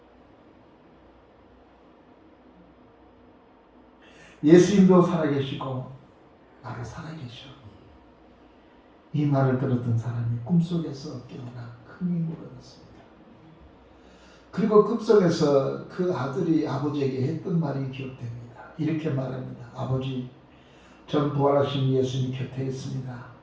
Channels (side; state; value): both; identical; correlation 1.00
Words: 예수님도 살아계시고 나도 살아계셔. 이 말을 들었던 사람이 꿈속에서 깨어나 큰 힘을 얻었습니다. 그리고 꿈속에서 그 아들이 아버지에게 했던 말이 기억됩니다. 이렇게 말합니다. 아버지, 전 부활하신 예수님 곁에 있습니다.